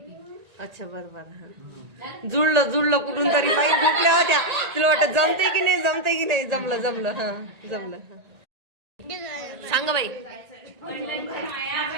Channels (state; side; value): late; left; 1.8 ms